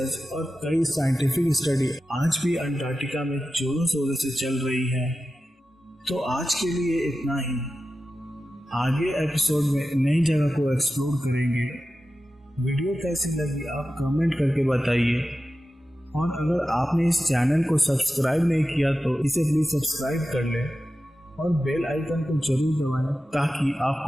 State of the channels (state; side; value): normal; both; correlation 0.93